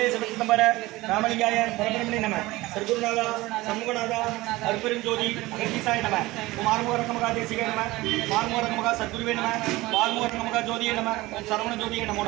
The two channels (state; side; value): quieter; left; 19.5 dB